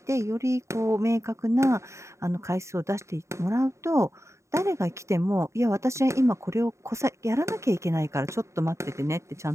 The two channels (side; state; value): left; late; 0.14 ms